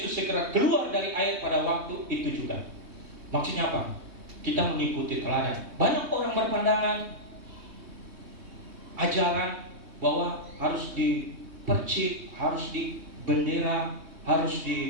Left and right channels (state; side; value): late; left; 3.2 ms